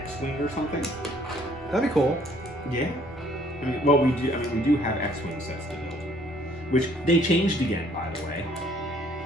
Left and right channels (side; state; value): both; normal; correlation 0.61